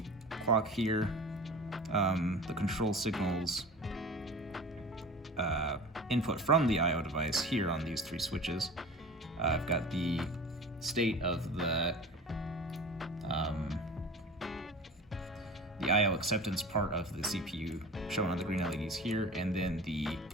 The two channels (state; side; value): normal; both; correlation 0.37